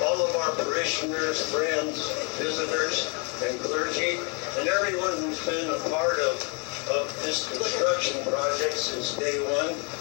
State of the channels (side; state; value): right; quieter; 34.2 dB